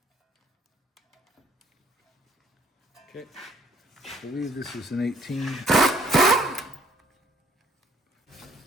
Okay, I believe this is an 18.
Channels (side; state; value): both; normal; correlation 0.63